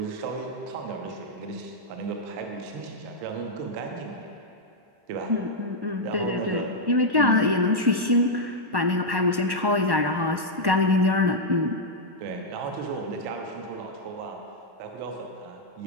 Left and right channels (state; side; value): late; left; 1.1 ms